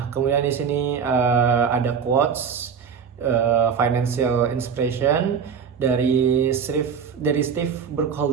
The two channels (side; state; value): left; quieter; 6.7 dB